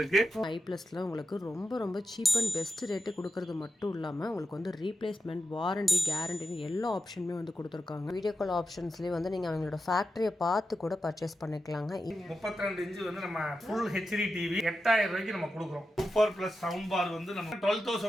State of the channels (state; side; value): normal; both; correlation 0.89